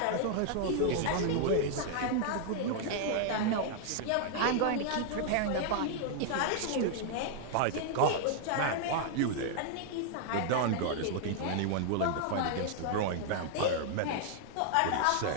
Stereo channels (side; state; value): both; different; correlation 0.00